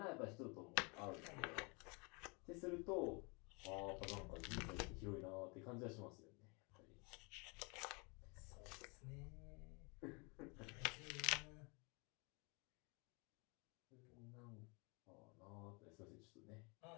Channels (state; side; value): quieter; right; 31.2 dB